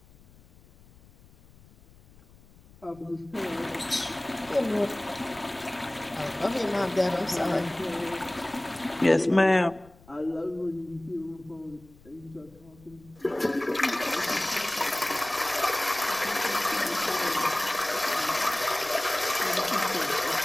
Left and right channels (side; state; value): left; noise; rumble, 25 dB below the sound